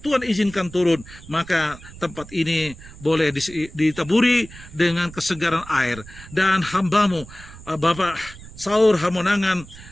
Tuhan izinkan turun, maka tempat ini boleh ditaburi dengan kesegaran air. Dan hamba-Mu Bapak Saur Hamonangan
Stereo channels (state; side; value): noise; right; rumble, 17 dB below the sound